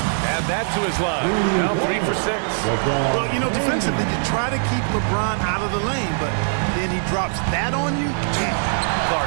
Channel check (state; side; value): silent; left; digital silence